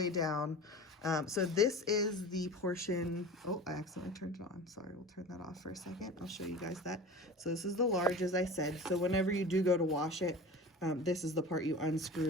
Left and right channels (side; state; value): both; normal; correlation 0.35